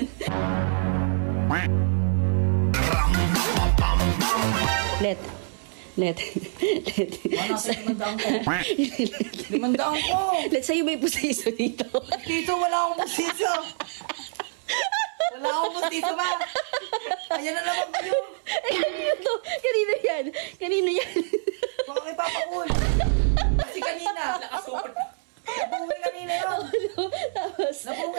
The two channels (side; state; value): left; silent; 61 dB below the other